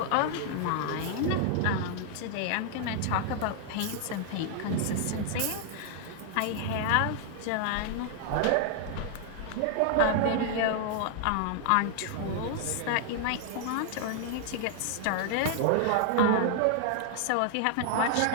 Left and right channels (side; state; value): both; different; correlation 0.00